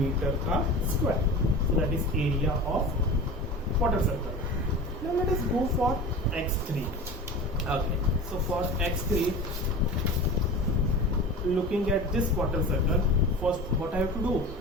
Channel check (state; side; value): normal; both; correlation 0.33